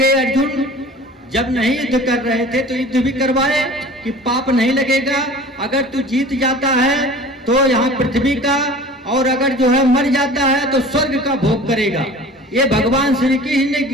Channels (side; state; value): both; normal; correlation 0.42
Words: अर्जुन, जब नहीं युद्ध कर रहे थे तो युद्ध भी करवाए कि पाप नहीं लगेगा। अगर तू जीत जाता है तो यहाँ पृथ्वी का, और अगर जो है मर जाता है तो स्वर्ग का भोग करेगा। ये भगवान श्री कृष्ण ने